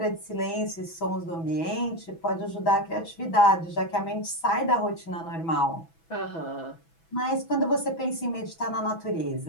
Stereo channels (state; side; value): late; right; 6.1 ms